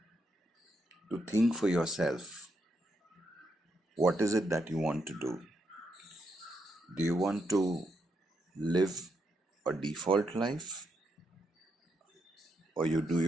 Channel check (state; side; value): normal; both; correlation 0.80